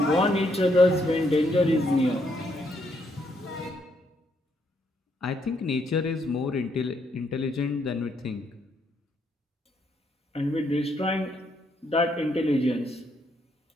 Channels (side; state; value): both; normal; correlation 0.74